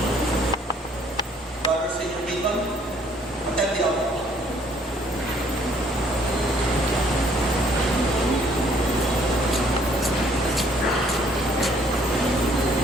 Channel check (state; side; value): normal; both; correlation 0.62